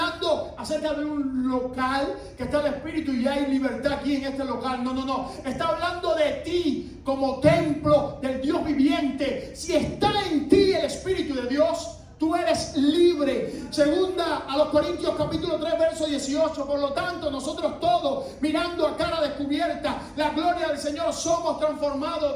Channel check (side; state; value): both; identical; correlation 1.00